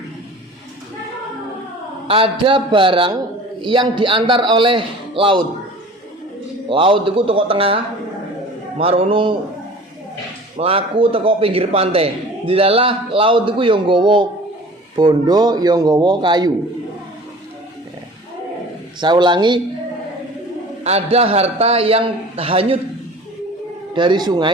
Ada barang yang diantar oleh laut. Laut itu teko tengah, marunung melaku teko pinggir pantai. Di dalam laut itu yang nggawa bondo, yang nggawa kayu. Saya ulangi, ada harta yang hanyut dari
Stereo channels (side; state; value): both; normal; correlation 0.43